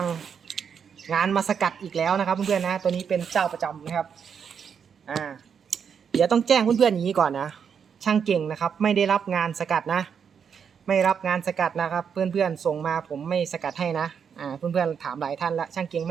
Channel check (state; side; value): quieter; left; 7.1 dB